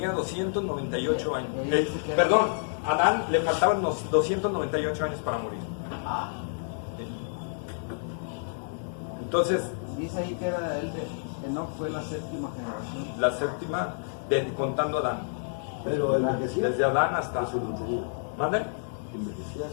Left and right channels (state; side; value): silent; right; 59 dB below the other